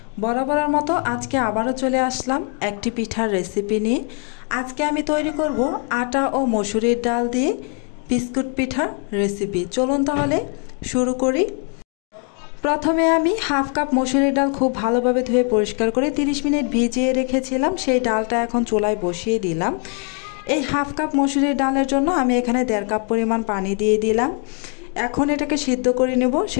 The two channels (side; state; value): right; quieter; 39.3 dB